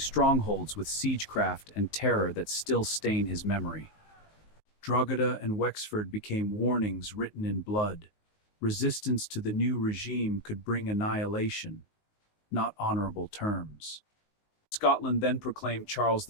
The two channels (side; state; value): right; late; 19 ms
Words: with siegecraft and terror that still stain his memory. Drogheda and Wexford became warnings written in blood. Resistance to the new regime could bring annihilation, not honorable terms. Scotland then proclaimed Charles